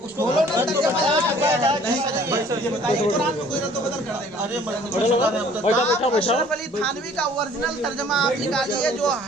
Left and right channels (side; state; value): both; normal; correlation 0.54